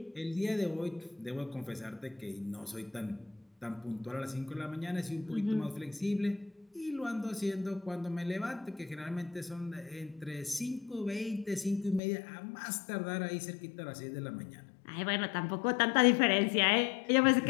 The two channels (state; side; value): drops out; right; at 12.0 s